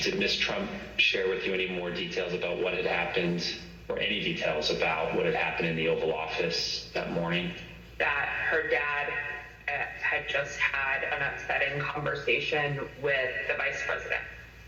Ms. Trump share with you any more details about what had happened, or any details about what had happened in the Oval Office that morning? That her dad had just had an upsetting conversation with the vice president.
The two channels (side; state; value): both; identical; correlation 1.00